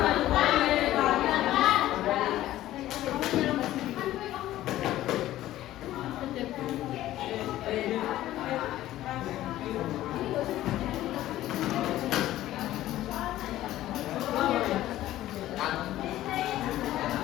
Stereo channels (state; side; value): quieter; right; 14.4 dB